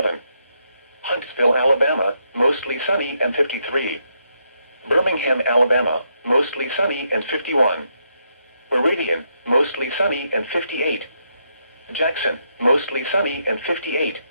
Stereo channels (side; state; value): both; inverted; correlation -0.78